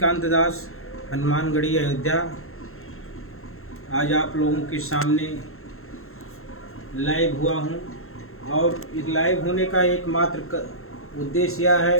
दास, हनुमानगढ़ी, अयोध्या, आज आप लोगों के सामने लाइव हुआ हूँ। और इस लाइव होने का एकमात्र उद्देश्य यह है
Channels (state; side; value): late; right; 0.62 ms